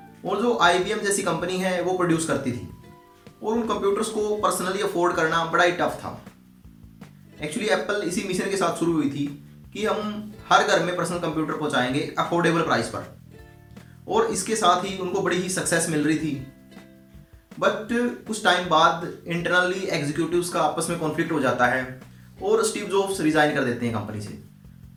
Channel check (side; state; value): both; identical; correlation 1.00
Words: और जो आईबीएम जैसी कंपनी है वो प्रोड्यूस करती थी और उन कंप्यूटर्स को पर्सनली अफोर्ड करना बड़ा ही टफ था। एक्चुअली एप्पल इसी मिशन के साथ शुरू हुई थी कि हम हर घर में पर्सनल कंप्यूटर पहुंचाएंगे अफोर्डेबल प्राइस पर, और इसके साथ ही उनको बड़ी ही सक्सेस मिल रही थी। बट कुछ टाइम बाद इंटरनली एग्जीक्यूटिव्स का आपस में कॉन्फ्लिक्ट हो जाता है और स्टीव जॉब्स रिजाइन कर देते हैं कंपनी से